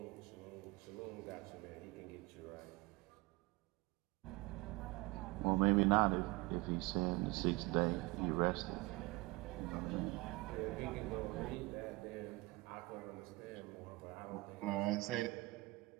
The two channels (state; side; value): quieter; left; 22.6 dB